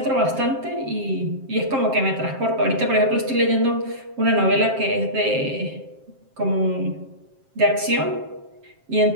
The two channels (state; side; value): late; left; 7.5 ms